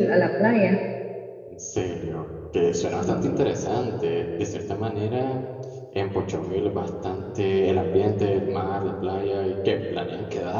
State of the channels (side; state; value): both; identical; correlation 1.00